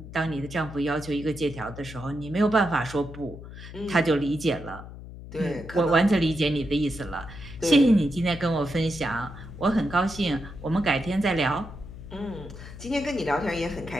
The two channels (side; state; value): left; noise; hum, 13 dB below the sound